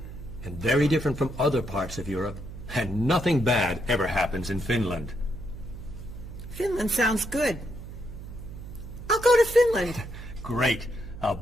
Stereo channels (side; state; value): right; noise; hum, 11 dB below the sound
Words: and very different from other parts of Europe. And nothing bad ever happens in Finland. Finland sounds good. I'll go to Finland. Great. I'll